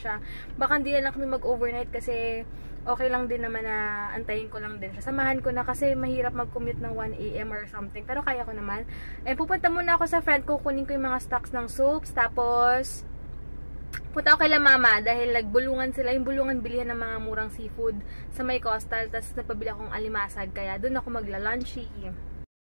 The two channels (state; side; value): inverted; both; correlation -1.00